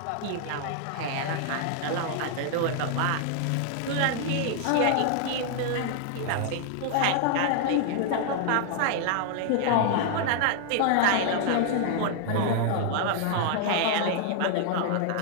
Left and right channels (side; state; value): both; different; correlation 0.00